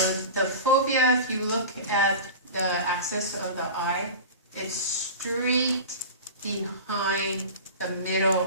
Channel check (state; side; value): inverted; both; correlation -0.31